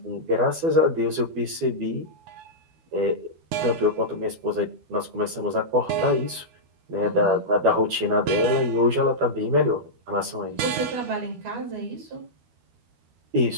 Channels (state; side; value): late; left; 12 ms